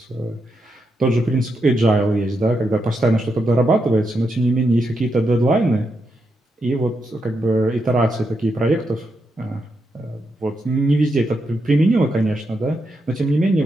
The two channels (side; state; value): both; normal; correlation 0.83